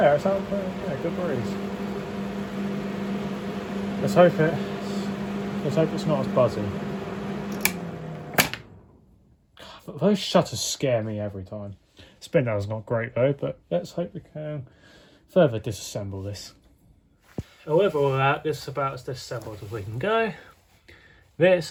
it's out, yeah, good breeze. Let's hope it's not as buzzy. But those shutters scare me every time. Spin down's not great though, but let's hope we can further disassemble this. And with all that, this is about as disassembled as we can go. This,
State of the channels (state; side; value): identical; both; correlation 1.00